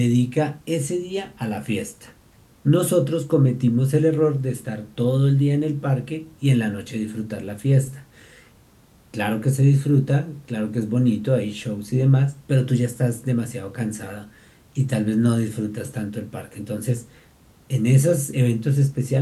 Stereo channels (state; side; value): identical; both; correlation 1.00